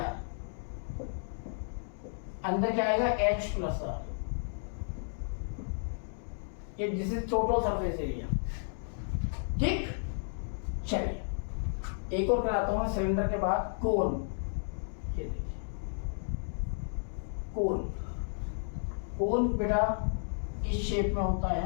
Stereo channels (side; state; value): right; silent; digital silence